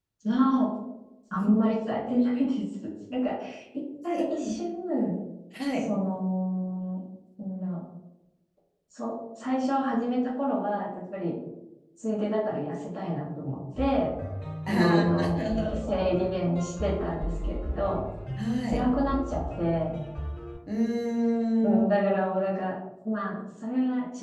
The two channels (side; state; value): both; identical; correlation 1.00